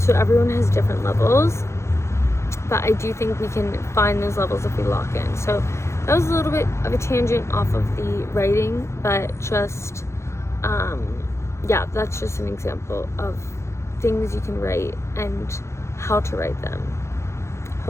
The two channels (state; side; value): late; right; 0.13 ms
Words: everyone has different levels, but I do think we can find those levels if we lock in. So that was a little bit of a tangent off of the writing, but just yeah, that's just an example of things you can write and how to write them.